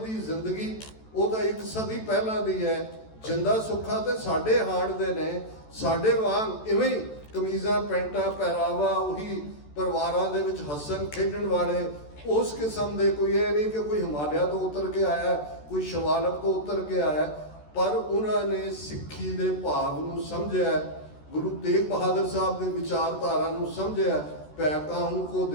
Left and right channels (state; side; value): late; right; 14 ms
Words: ਜ਼ਿੰਦਗੀ ਉਹ ਤਾਂ 1 ਸਦੀ ਪਹਿਲਾਂ ਦੀ ਹੈ। ਜਿੰਦਾ ਸੁੱਖਾ ਤੇ ਸਾਡੇ ਹਾਣ ਦੇ ਨੇ, ਸਾਡੇ ਵਾਂਗ ਇਵੇਂ ਹੀ ਕਮੀਜ਼ਾਂ ਪੈਂਟਾਂ ਪਹਿਰਾਵਾ, ਉਹੀ ਪਰਿਵਾਰਾਂ ਦੇ ਵਿੱਚ ਹੱਸਣ ਖੇਡਣ ਵਾਲੇ, ਉਸ ਕਿਸਮ ਦੇ। ਕੋਈ ਇਹ ਨਹੀਂ ਕਿ ਕੋਈ ਹਿਮਾਲਿਆ ਤੋਂ ਉਤਰ ਕੇ ਆਇਆ, ਕੋਈ ਸ਼ਿਵਾਲਿਕ ਤੋਂ ਉਤਰ ਕੇ ਆਇਆ, ਪਰ ਉਹਨਾਂ ਨੇ ਸਿੱਖੀ ਦੇ ਭਾਵ ਨੂੰ ਸਮਝਿਆ, ਗੁਰੂ ਤੇਗ ਬਹਾਦਰ ਸਾਹਿਬ ਦੀ ਵਿਚਾਰਧਾਰਾ ਨੂੰ ਸਮਝਿਆ। ਭੈ ਕਾਹੂ ਕੋ